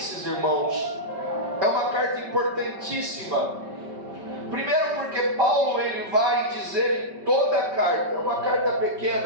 irmãos, é uma carta importantíssima. Primeiro porque Paulo ele vai dizer em toda a carta, é uma carta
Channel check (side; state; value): left; late; 5.2 ms